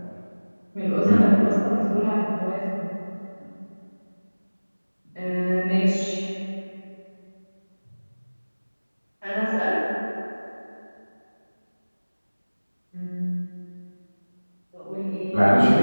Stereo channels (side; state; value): both; inverted; correlation -1.00